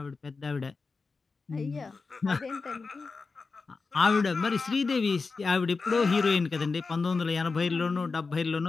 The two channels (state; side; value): quieter; right; 4.3 dB